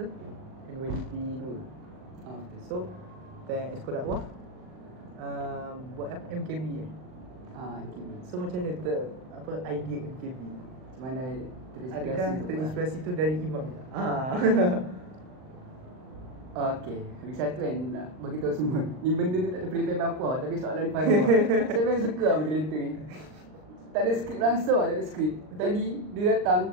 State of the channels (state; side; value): late; left; 39 ms